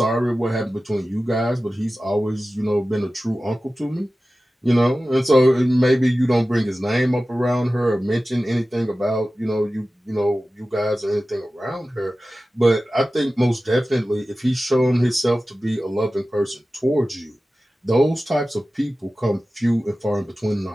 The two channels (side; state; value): both; normal; correlation 0.95